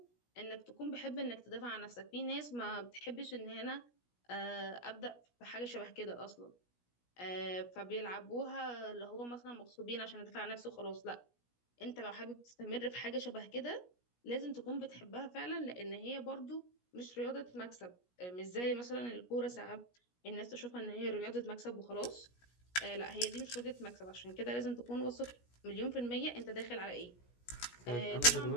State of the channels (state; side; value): late; right; 17 ms